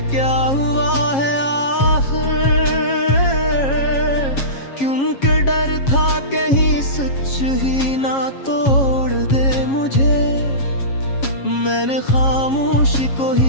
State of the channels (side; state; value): right; late; 7.3 ms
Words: क्या हुआ है आखिर, क्योंकि डर था कहीं सच ही ना तोड़ दे मुझे। मैंने खामोशी को